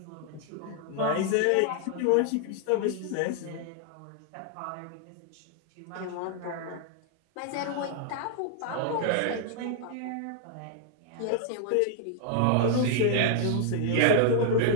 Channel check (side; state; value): both; different; correlation 0.00